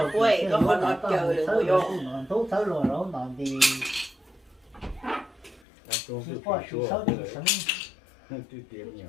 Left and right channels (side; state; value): right; drops out; at 5.6 s